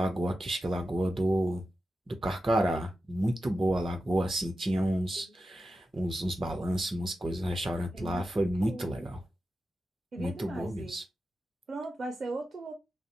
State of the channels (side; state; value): both; normal; correlation 0.91